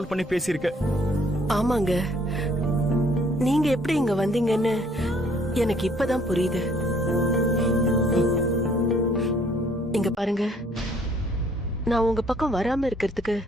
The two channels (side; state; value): both; normal; correlation 0.62